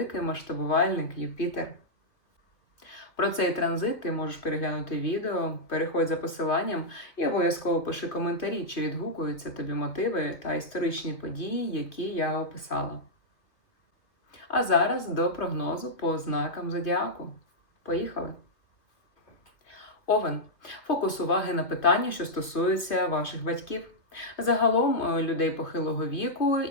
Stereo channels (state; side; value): late; right; 2.5 ms